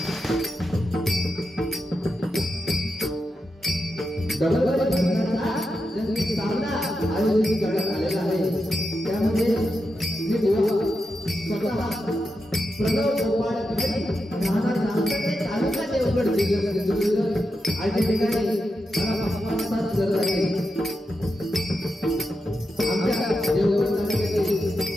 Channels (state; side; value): normal; both; correlation 0.87